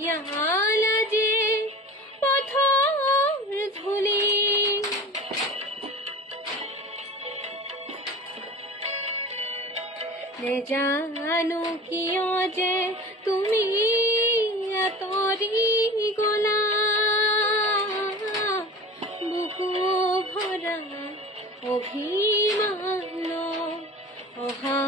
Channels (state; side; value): normal; both; correlation 0.36